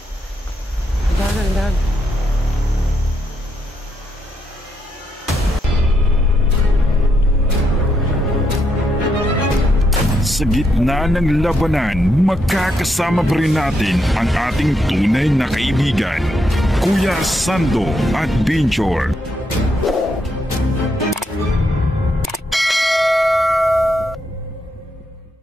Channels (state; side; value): normal; both; correlation 0.79